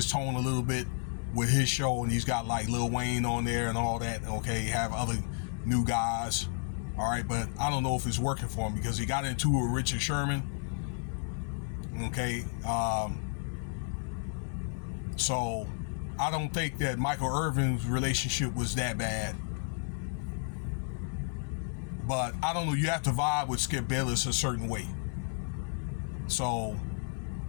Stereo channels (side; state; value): right; silent; 56 dB below the other